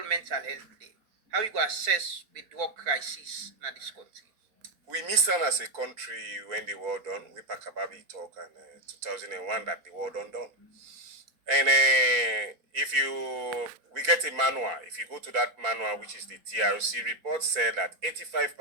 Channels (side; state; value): left; late; 4.8 ms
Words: Mental Health Day. How you go assess the drug crisis in this country? We missed on as a country when the war done. We pack about it talk and 2001 that the war done. And we get a manual. If you go to that manual, which is the TRC report, said that